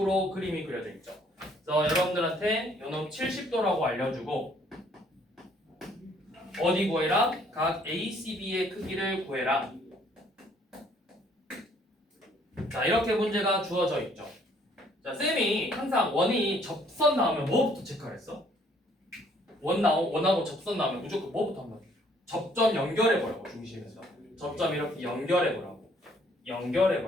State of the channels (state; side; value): normal; both; correlation 0.63